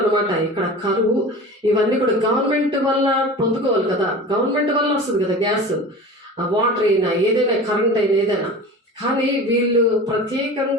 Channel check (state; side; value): normal; both; correlation 0.35